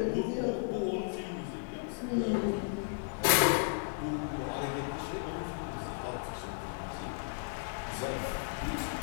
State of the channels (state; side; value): silent; right; 55 dB below the other